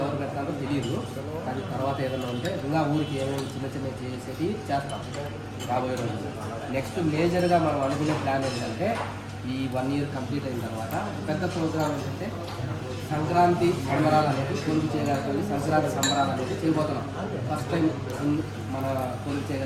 ఎవరు పెట్టాలో తెలియదు, అది తర్వాత ఏదైనా ఉంటే ఇంకా ఊరికి ఏమేమి చిన్న చిన్న చేసేది చేస్తాం రాబోయే రోజులు. నెక్స్ట్ మేజర్గా మనం అనుకునే ప్లాన్ ఏంటంటే ఈ 1 year కంప్లీట్ అయిన తర్వాత పెద్ద ప్రోగ్రామ్ ఏంటంటే సంక్రాంతి సంబరాలు అనేది కొలుపు చేయగలిగి సంక్రాంతి సంబరాలు అనేది చేయబోతున్నాం. ఫస్ట్ టైం మన కొలుపు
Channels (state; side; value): identical; both; correlation 1.00